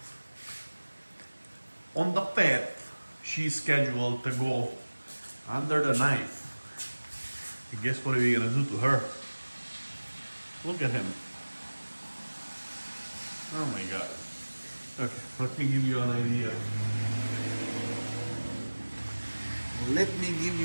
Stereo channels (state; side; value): inverted; both; correlation -1.00